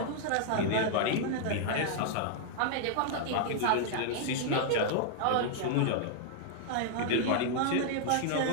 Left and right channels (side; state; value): both; different; correlation -0.01